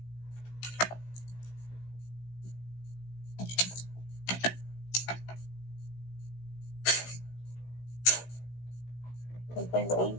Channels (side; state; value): right; late; 16 ms